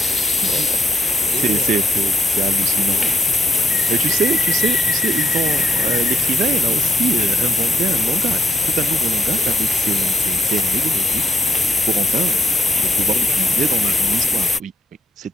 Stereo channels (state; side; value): normal; both; correlation 0.79